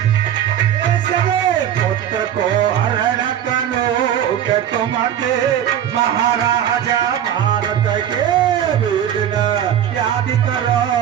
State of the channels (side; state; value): left; quieter; 10.2 dB